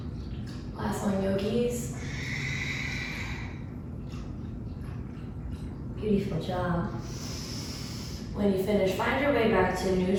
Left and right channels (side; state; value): both; identical; correlation 1.00